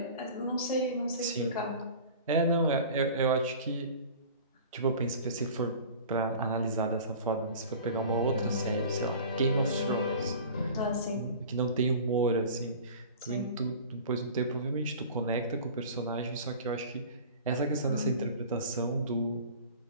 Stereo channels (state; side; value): inverted; both; correlation -0.40